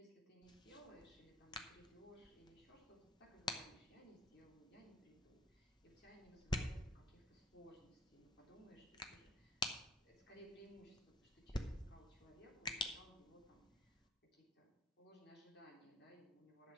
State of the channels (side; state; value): both; normal; correlation 0.55